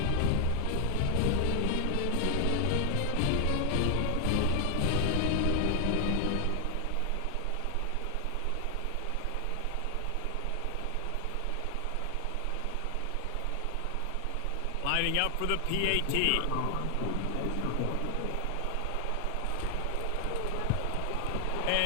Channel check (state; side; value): different; both; correlation 0.00